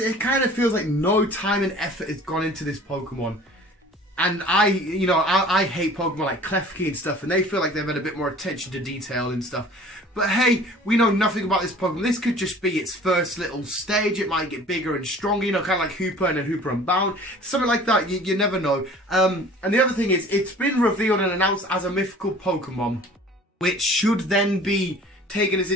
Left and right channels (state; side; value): normal; both; correlation 0.47